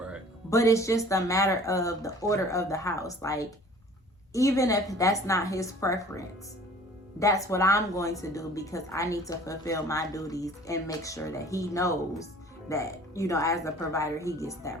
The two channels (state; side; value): normal; both; correlation 0.49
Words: But it's just a matter of the order of the house. Like, even if that's not his preference, that's what I'm going to do because I need to fulfill my duties and make sure that he knows that, you know, as a provider, he gets